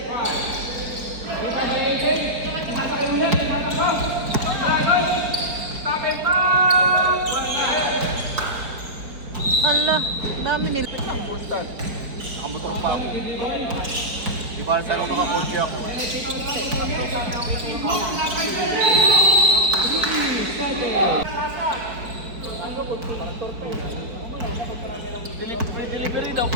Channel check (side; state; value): left; late; 4.4 ms